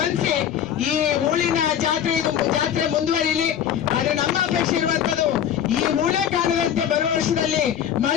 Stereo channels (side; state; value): right; quieter; 9.5 dB